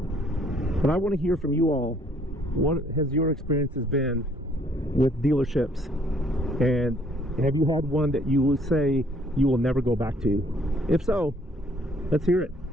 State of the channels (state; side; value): normal; both; correlation 0.62